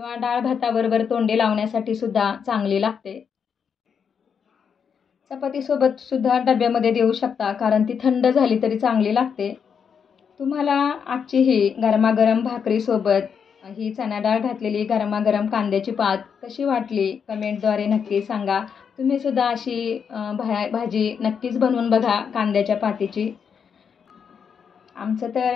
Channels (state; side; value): quieter; right; 6.9 dB